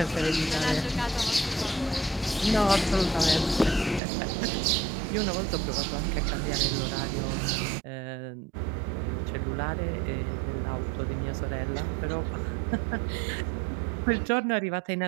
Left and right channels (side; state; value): left; drops out; at 4.0 s